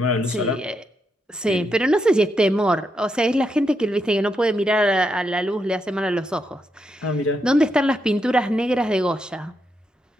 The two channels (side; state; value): both; normal; correlation 0.82